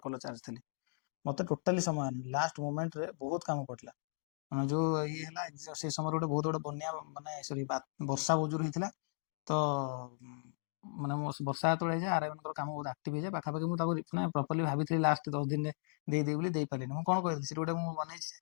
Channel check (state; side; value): silent; right; digital silence